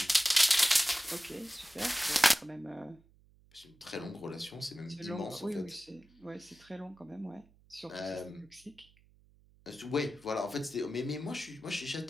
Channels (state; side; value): noise; right; hum, 29 dB below the sound